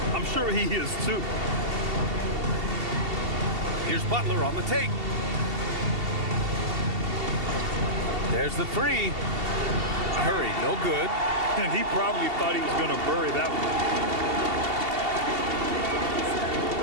I'm sure he is too. Here's Butler on the take. There's the 3. Curry, no good. And he probably thought he was going to bury that one.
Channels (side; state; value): left; late; 2.7 ms